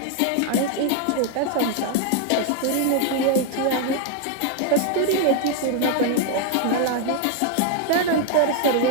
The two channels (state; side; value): different; both; correlation 0.01